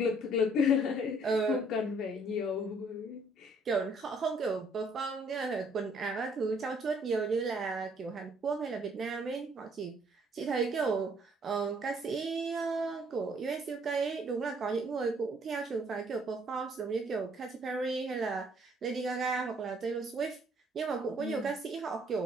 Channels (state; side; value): normal; both; correlation 0.64